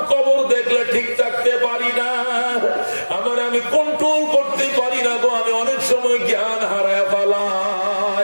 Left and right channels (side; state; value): both; inverted; correlation -1.00